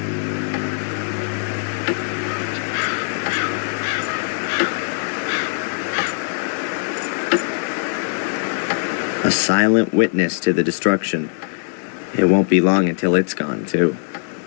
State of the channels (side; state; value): right; silent; digital silence